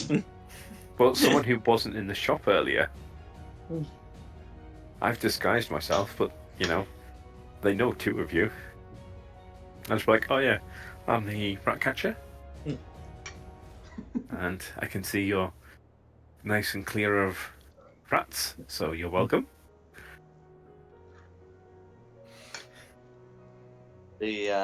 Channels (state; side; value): identical; both; correlation 1.00